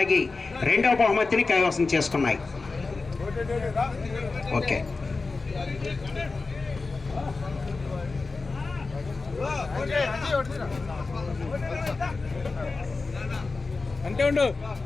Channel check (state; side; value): quieter; right; 3.9 dB